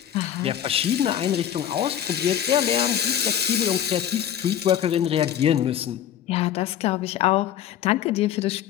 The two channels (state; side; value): quieter; right; 10.2 dB